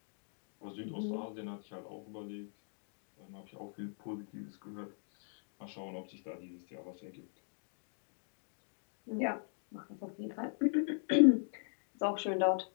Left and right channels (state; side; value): silent; right; digital silence